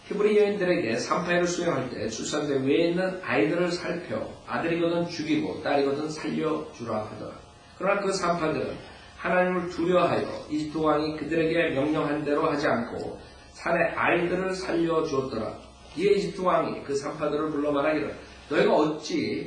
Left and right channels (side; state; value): both; identical; correlation 1.00